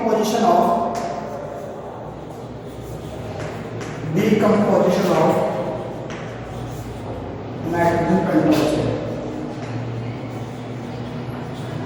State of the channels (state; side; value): identical; both; correlation 1.00